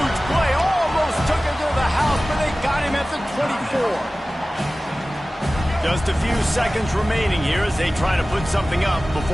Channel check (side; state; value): both; normal; correlation 0.97